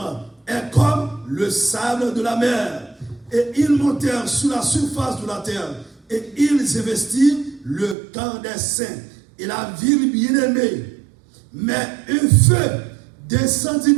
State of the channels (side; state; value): left; drops out; at 8.0 s